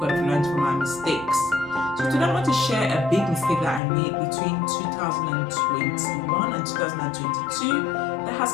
have learned from our mistakes. So today I want to share a big mistake that I made between 2021 and 2022 that has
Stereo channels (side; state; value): right; drops out; at 3.8 s